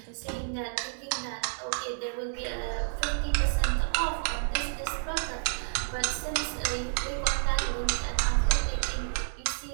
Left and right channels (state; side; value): silent; left; digital silence